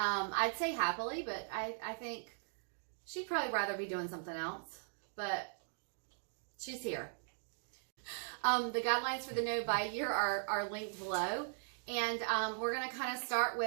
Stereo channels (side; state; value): left; silent; digital silence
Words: say happily, but I think she'd probably rather be doing something else, but she's here. The guidelines for the no-buy year are linked below, and we're going to kind of start